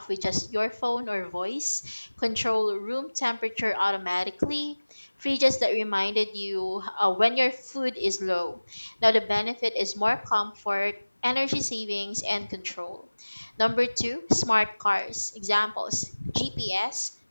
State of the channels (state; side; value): inverted; both; correlation -1.00